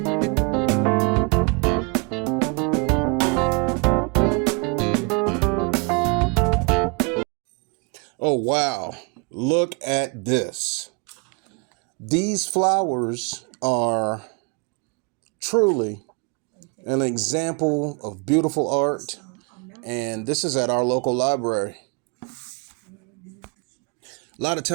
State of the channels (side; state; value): left; quieter; 32.6 dB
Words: Oh wow, look at this. These flowers are truly an example of beautiful art, and this is at our local library. A lot of